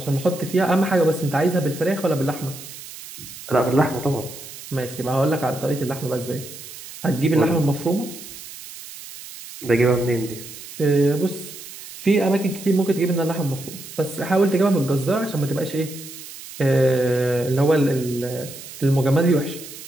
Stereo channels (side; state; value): right; noise; hiss, 14 dB below the sound